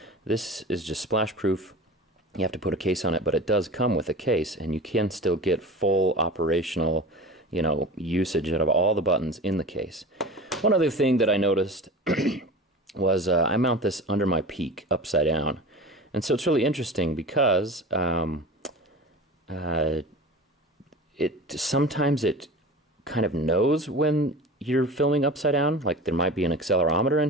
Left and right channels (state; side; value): normal; both; correlation 0.34